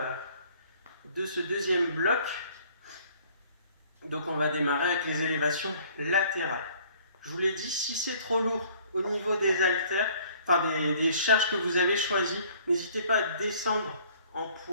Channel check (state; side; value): inverted; both; correlation -0.56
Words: de ce deuxième bloc. Donc on va démarrer avec les élévations latérales. Je vous l'ai dit, si c'est trop lourd au niveau des haltères, enfin des charges que vous avez choisies, n'hésitez pas à descendre en